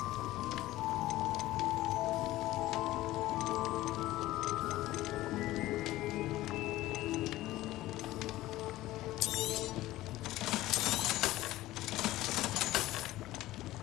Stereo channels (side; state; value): right; quieter; 16.4 dB